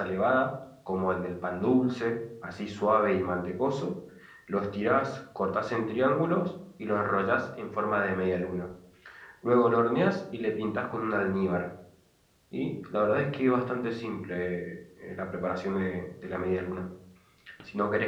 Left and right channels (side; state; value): both; identical; correlation 1.00